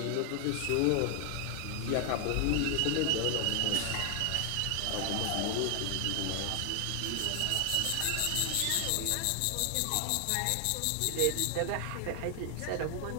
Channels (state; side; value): different; both; correlation 0.00